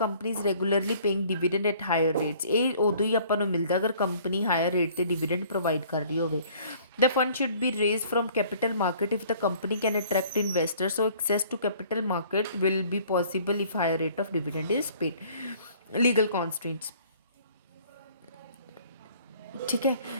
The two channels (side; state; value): both; inverted; correlation -0.55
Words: is regularly paying dividend at higher rates. ਇਹ ਉਦੋਂ ਹੀ ਆਪਾਂ ਨੂੰ ਮਿਲਦਾ ਅਗਰ ਕੰਪਨੀ ਹਾਇਰ ਰੇਟ ਤੇ ਡਿਵੀਡੈਂਡ ਪ੍ਰੋਵਾਈਡ ਕਰ ਰਹੀ ਹੋਵੇ। The fund should be raised from capital market if the company can attract investors. So access to capital market will be possible if higher rate of dividend is paid. Legal constraints, ठीक है।